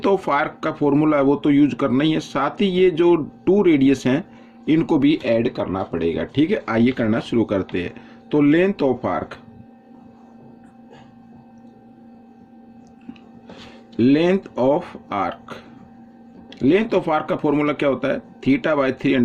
ऑफ आर्क का फॉर्मूला है वो तो यूज करना ही है, साथ ही ये जो 2 रेडियस हैं इनको भी ऐड करना पड़ेगा। ठीक है, आइए करना शुरू करते हैं। तो length of arc, length of arc, length of arc का फॉर्मूला क्या होता है,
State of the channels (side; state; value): both; identical; correlation 1.00